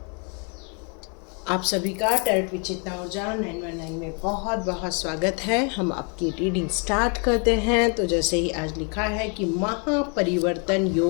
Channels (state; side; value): quieter; right; 36.8 dB